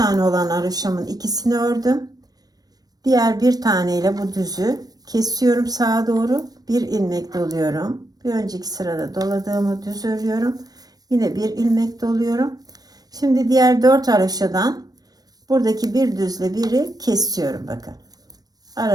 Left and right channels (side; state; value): left; late; 0.19 ms